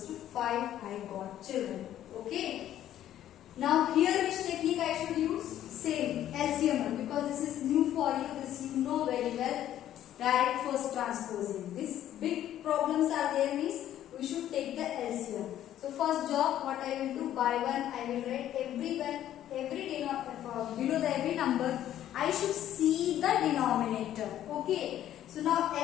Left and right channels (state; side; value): quieter; right; 11.9 dB